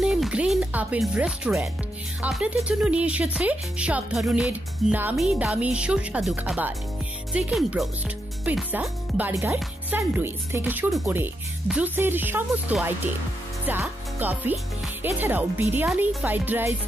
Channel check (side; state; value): both; normal; correlation 0.83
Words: গ্রিন আপেল রেস্টুরেন্ট আপনাদের জন্য নিয়ে এসেছে সব ধরনের নামি দামি সুস্বাদু খাবার। Chicken broast, pizza, burger, sandwich থেকে শুরু করে জুসের সমস্ত আইটেম, চা, কফি, এছাড়াও বিরিয়ানি, ফ্রাইড রাইস,